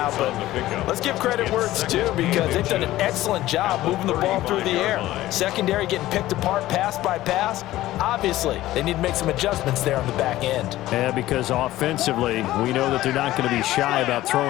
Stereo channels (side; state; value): right; quieter; 15.5 dB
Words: But let's give credit where it's due, because they've done an excellent job moving the ball through the air. Secondary getting picked apart pass by pass. Obviously, they need to make some adjustments there on the back end. Yeah, because offensively, we know that they're not going to be shy about